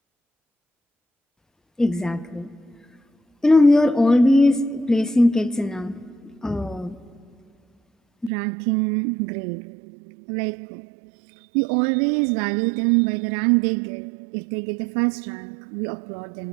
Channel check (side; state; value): left; drops out; at 8.3 s